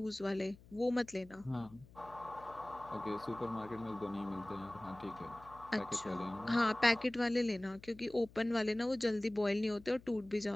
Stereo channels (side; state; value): left; noise; hum, 22 dB below the sound